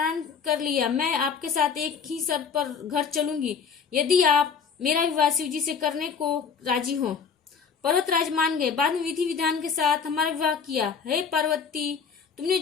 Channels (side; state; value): right; quieter; 6.2 dB